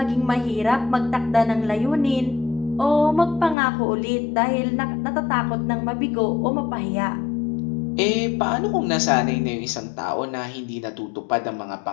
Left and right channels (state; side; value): drops out; right; at 3.6 s